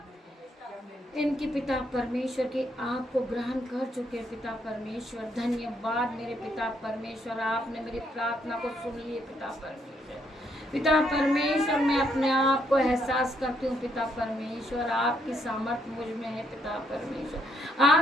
इनकी पिता परमेश्वर की आग को ग्रहण कर चुके हैं पिता परमेश्वर। धन्यवाद मेरे पिता परमेश्वर, आपने मेरी प्रार्थना को सुन लिए पिता परमेश्वर। पिता परमेश्वर, मैं अपने आप को एहसास करती हूँ पिता परमेश्वर, आपकी सामर्थ मुझ में है पिता परमेश्वर,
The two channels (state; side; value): normal; both; correlation 0.73